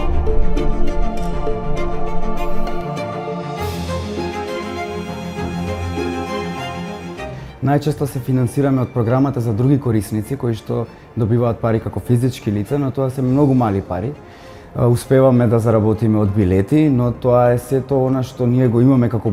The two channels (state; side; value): identical; both; correlation 1.00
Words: Најчесто се финансираме од програмата за други корисници кои што добиваат пари како физички лица, но тоа се многу мали пари. Успеваме да заработиме од билети, но тоа е сето она што ние го имаме како